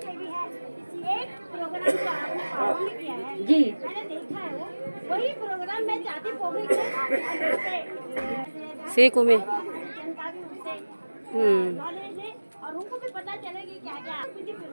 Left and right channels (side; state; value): both; inverted; correlation -1.00